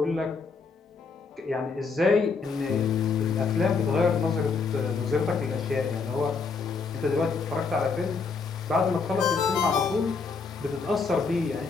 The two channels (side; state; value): right; quieter; 4.8 dB